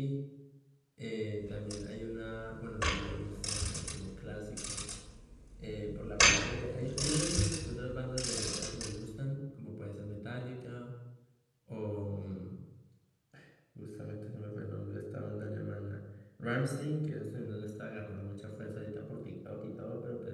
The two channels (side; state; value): both; identical; correlation 1.00